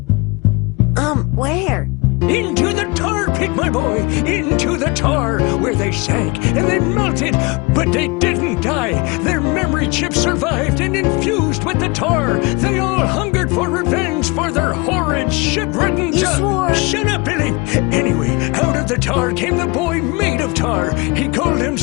Where? Into the tar pit, my boy! Into the tar, where they sank and they melted, but they didn't die. Their memory chips survived and infused with the tar. They all hungered for revenge for their horrid, shit-ridden... You swore! Shut up, Billy! Anyway, out of the tar came the boy made of tar. He called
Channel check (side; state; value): right; quieter; 26.6 dB